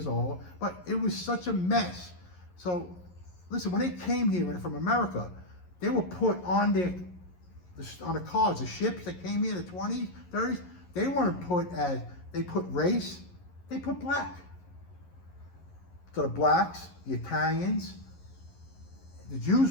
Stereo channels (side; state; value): right; late; 11 ms